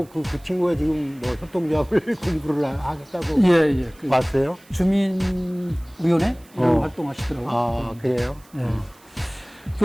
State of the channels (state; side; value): noise; right; hiss, 28 dB below the sound